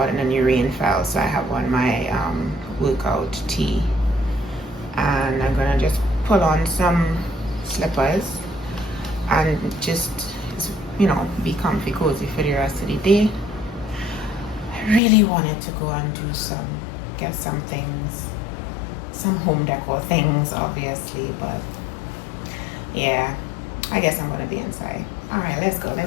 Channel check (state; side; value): drops out; right; at 15.0 s